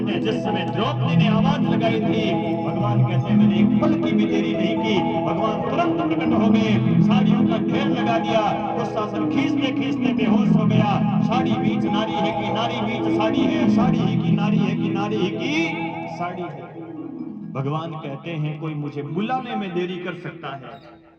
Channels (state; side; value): identical; both; correlation 1.00